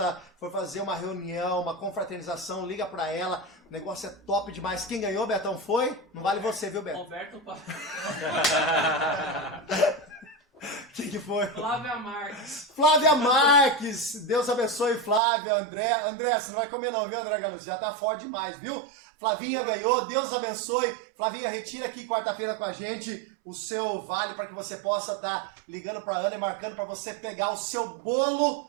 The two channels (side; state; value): left; drops out; at 15.2 s